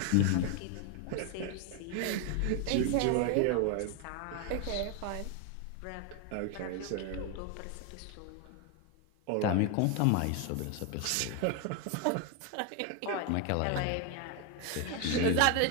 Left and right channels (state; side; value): different; both; correlation 0.01